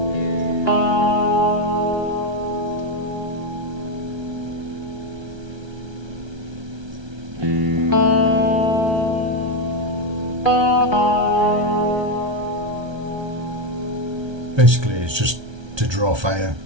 Basically, it's just to draw fire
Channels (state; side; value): late; left; 1.3 ms